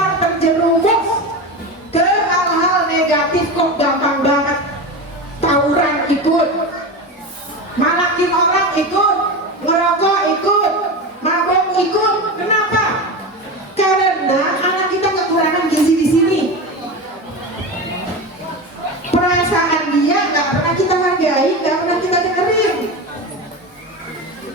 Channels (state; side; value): normal; both; correlation 0.23